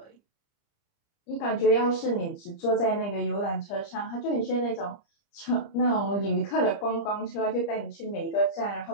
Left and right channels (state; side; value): late; right; 30 ms